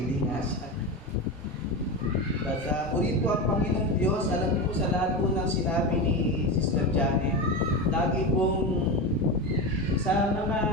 nga siya. At purihin po ang Panginoong Diyos. Alam niyo po sa lahat po ng sinabi ni Sister Janet, lagi pong sa mga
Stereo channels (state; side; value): normal; both; correlation 0.19